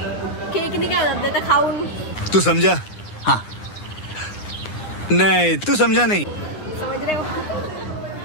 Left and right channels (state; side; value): late; right; 9.8 ms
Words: केकनी काय होतं ते तर खाऊन. तू समझा? हाँ. नहीं तू समझा नहीं. समझ रहे हो?